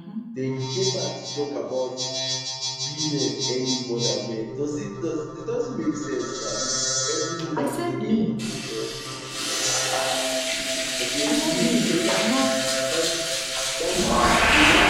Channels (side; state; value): both; identical; correlation 1.00